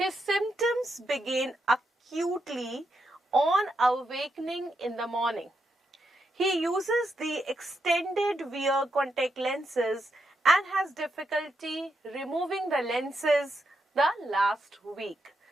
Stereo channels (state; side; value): normal; both; correlation 0.82